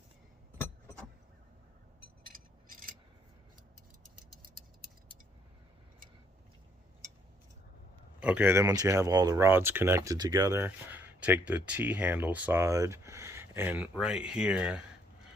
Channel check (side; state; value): both; normal; correlation 0.67